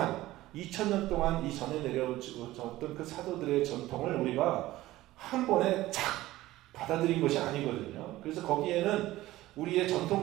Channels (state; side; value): quieter; left; 16.6 dB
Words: 2000년 동안 이 전에 내려졌던 그 사도들의 전통을 우리가 한 번에 착 받아들인 것이 아니거든요. 그래서 거기에는 우리의